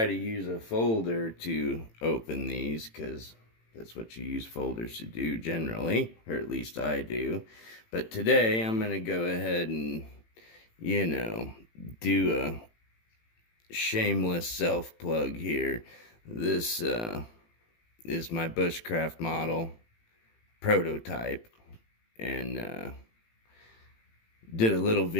to use a folder to open these because that's what you use folders to do generally, or at least I do. But today I'm going to go ahead and, do a shameless self-plug here. This is my bushcraft model prototype, and did a little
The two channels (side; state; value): right; late; 18 ms